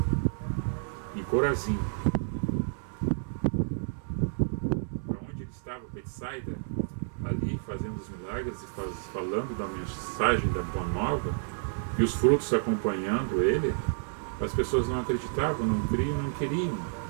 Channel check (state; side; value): silent; left; 58 dB below the other